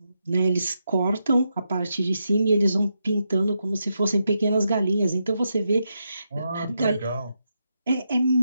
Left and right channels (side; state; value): both; inverted; correlation -0.84